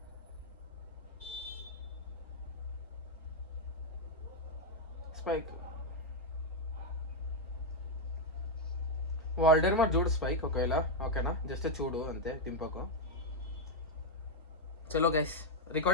స్పైక్ వాల్డర్ మరి చూడు స్పైక్ ఒకవేళ ఓకేనా, జస్ట్ చూడు అంతే, దింపకు. చలో గైస్,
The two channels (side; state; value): both; normal; correlation 0.01